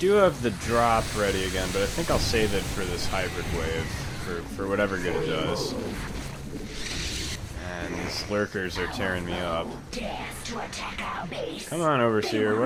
have the drop ready again, but I think I'll save it for this hybrid wave, for whatever good it does. And these lurkers are tearing me up. Dares to attack our base. Come on, Overseer,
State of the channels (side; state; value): both; identical; correlation 1.00